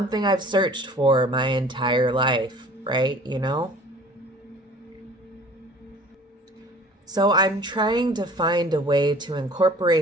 I've searched for my entire life, right? You know? So I'm trying to find a way to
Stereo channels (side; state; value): both; normal; correlation 0.48